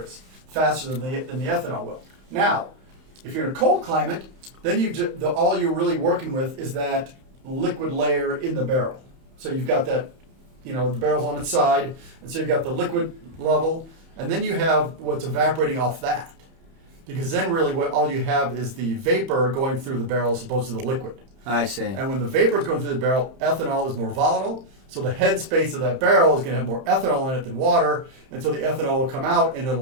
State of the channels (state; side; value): late; left; 31 ms